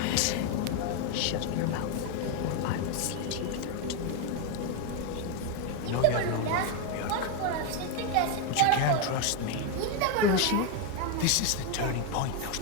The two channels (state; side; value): different; both; correlation 0.01